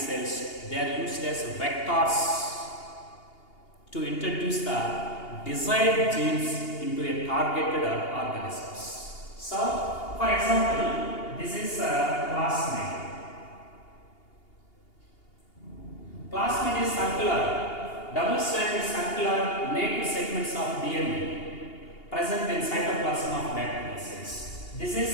they are used as vectors to introduce the desired genes into a targeted organisms. So, for example, this is a plasmid. Plasmid is circular, double-stranded circular naked segments of DNA present in cytoplasm of bacterial cells. This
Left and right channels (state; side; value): late; right; 2.8 ms